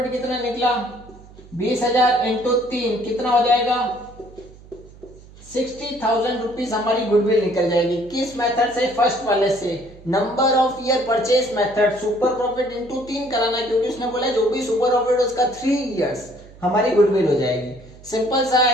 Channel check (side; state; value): right; noise; hum, 21 dB below the sound